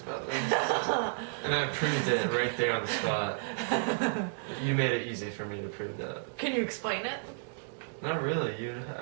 about this. And I proved it right there on the spot. You made it easy for me to prove that. Can you explain it? Not really.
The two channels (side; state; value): left; silent; digital silence